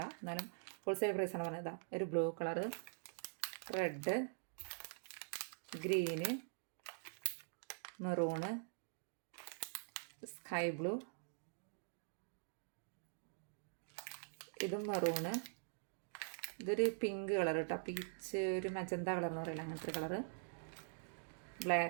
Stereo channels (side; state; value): left; silent; digital silence